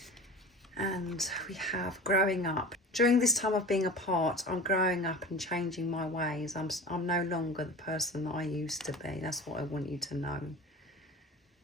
And we have growing up. During this time of being apart, I'm growing up and changing my ways. I'm no longer the person that I used to be. That's what I want you to know.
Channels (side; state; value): both; normal; correlation 0.36